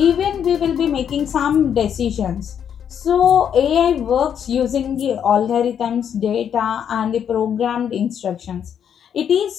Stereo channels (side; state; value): right; quieter; 8.5 dB